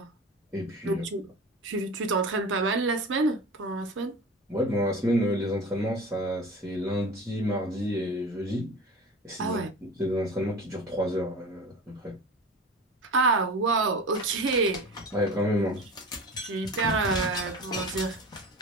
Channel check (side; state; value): both; normal; correlation 0.34